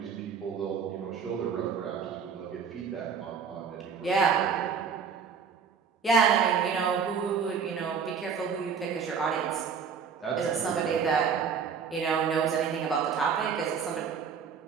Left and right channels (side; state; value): left; quieter; 6.3 dB